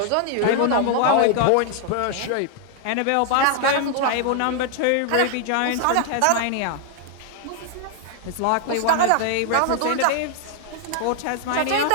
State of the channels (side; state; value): both; different; correlation 0.00